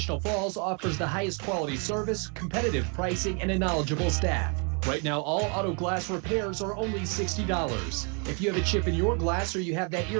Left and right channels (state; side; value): quieter; left; 36.7 dB